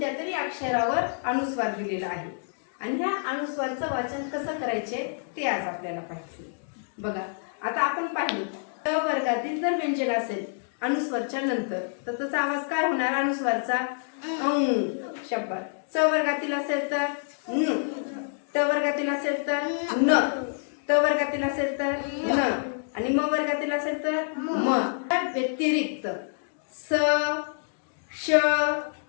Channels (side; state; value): right; silent; digital silence